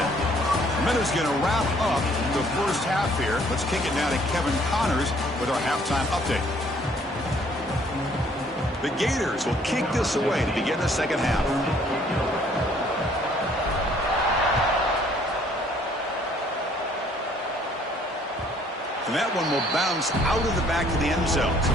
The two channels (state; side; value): normal; both; correlation 0.61